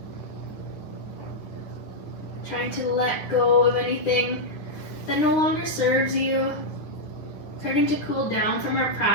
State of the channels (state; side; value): late; right; 9.8 ms